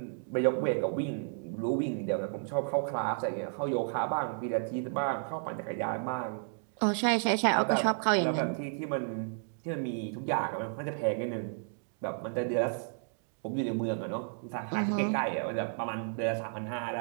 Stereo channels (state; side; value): silent; left; 56 dB below the other